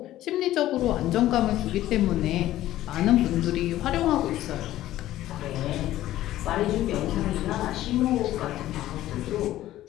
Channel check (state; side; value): quieter; right; 14.3 dB